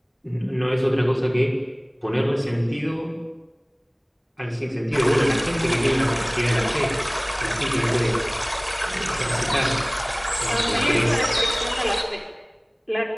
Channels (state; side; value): identical; both; correlation 1.00